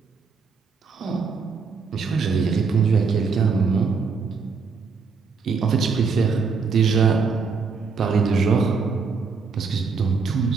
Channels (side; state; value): left; quieter; 5.0 dB